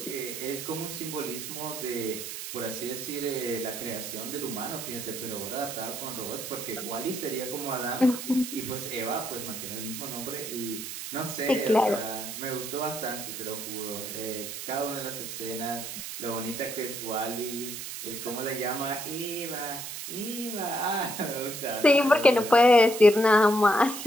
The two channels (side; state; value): right; noise; hiss, 7 dB below the sound